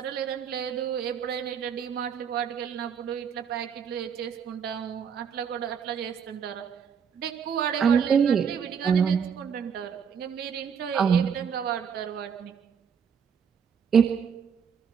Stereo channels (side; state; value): left; quieter; 7.1 dB